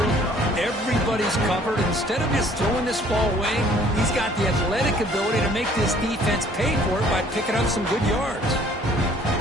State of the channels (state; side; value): normal; both; correlation 0.57